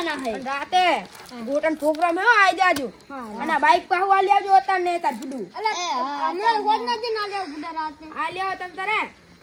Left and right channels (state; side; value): identical; both; correlation 1.00